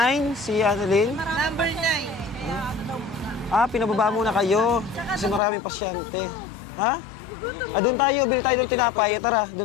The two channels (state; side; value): drops out; right; at 5.4 s